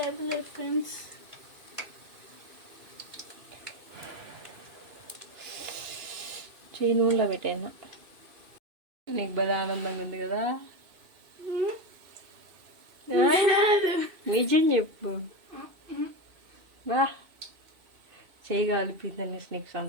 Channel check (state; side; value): late; left; 2.5 ms